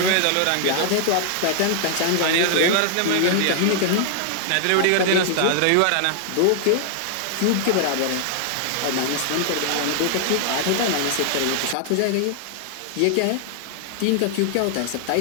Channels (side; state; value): both; different; correlation 0.00